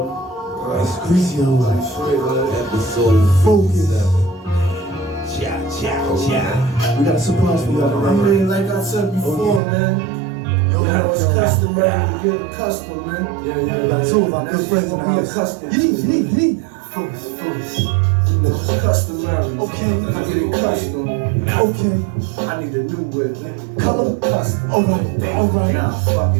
It's crazy Episode focus. Cha. We got a surprise for y'all I tonight. mean, like I said before, man. Now it's customary to get accustomed, man. We got two of our good friends in the house. Accustomed. Focus. You know, it's customary. Okay. I get accustomed. Okay. I need a new whip. Color. Custom. Alright. Nah, fuck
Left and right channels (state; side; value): drops out; left; at 9.6 s